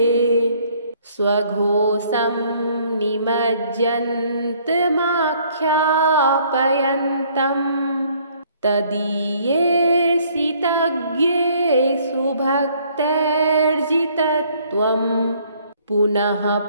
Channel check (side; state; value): both; inverted; correlation -0.62